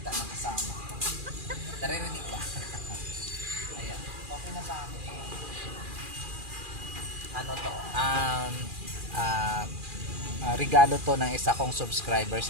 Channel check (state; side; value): late; left; 2.4 ms